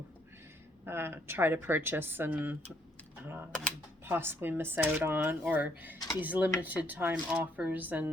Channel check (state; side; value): normal; both; correlation 0.69